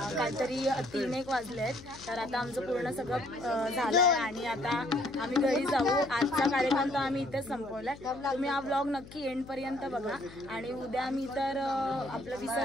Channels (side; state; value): left; noise; hum, 18 dB below the sound